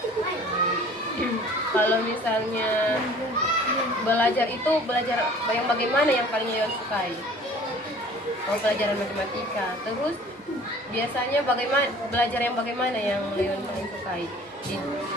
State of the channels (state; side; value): normal; both; correlation 0.49